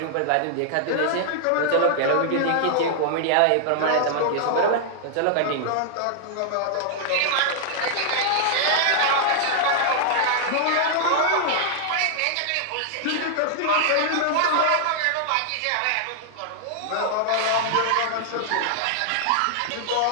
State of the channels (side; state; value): both; different; correlation -0.01